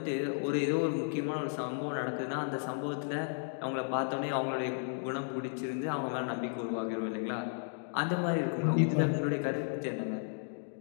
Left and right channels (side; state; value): right; silent; digital silence